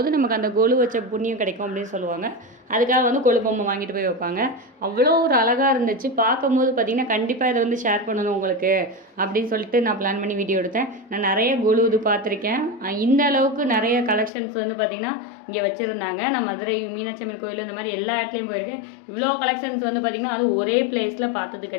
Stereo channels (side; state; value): right; drops out; at 14.3 s